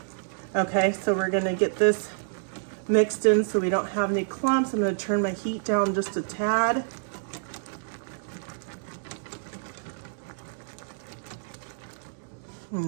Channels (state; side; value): silent; left; digital silence